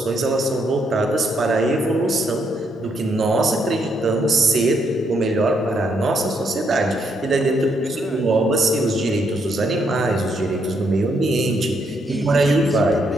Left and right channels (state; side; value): normal; both; correlation 0.75